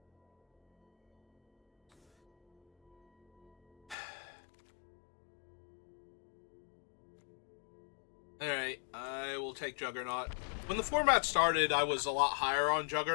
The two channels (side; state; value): right; drops out; at 4.0 s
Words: Alright, I will take Juggernaut. When the format started, I was a lot higher on